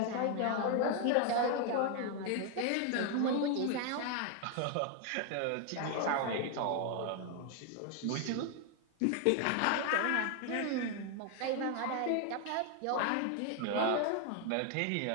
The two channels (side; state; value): both; different; correlation 0.00